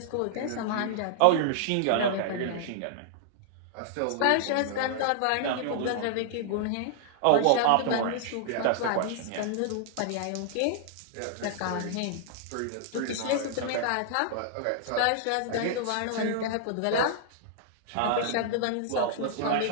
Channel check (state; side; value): different; both; correlation -0.01